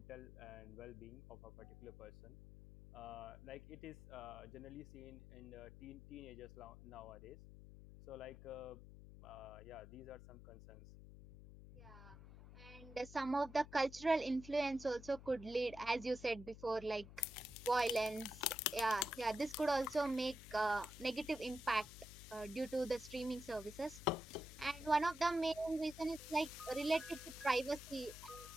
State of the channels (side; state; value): left; noise; hum, 15 dB below the sound